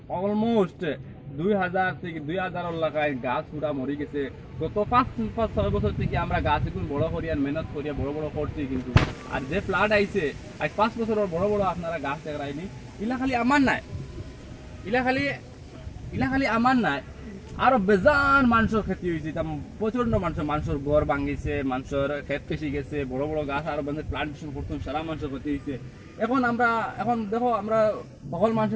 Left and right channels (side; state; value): both; identical; correlation 1.00